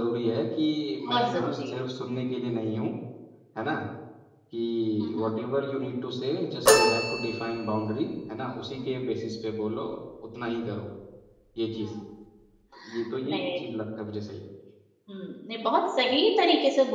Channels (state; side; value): identical; both; correlation 1.00